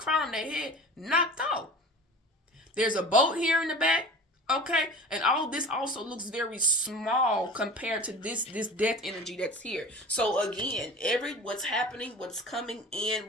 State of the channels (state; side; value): normal; both; correlation 0.38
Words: on their head knocked off. There's a boat here in the back. Okay, and all this also looks very small compared to this death energy that's here. So again, what's happening, what's coming in,